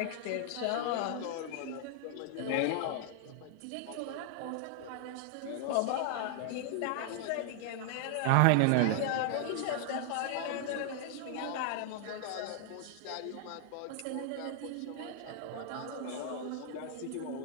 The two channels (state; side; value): different; both; correlation 0.00